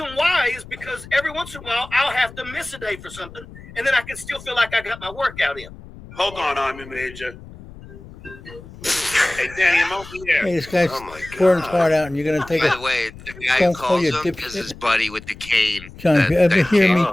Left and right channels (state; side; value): noise; left; rumble, 17 dB below the sound